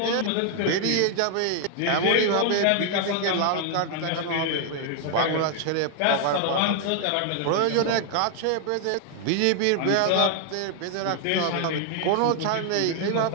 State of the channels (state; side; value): different; both; correlation 0.00